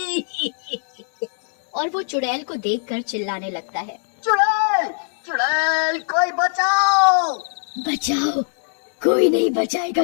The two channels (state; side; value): silent; right; 60 dB below the other